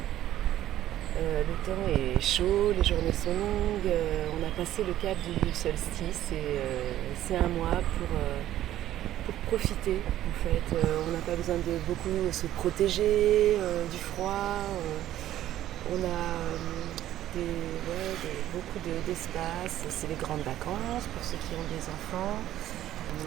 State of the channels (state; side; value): quieter; left; 13.0 dB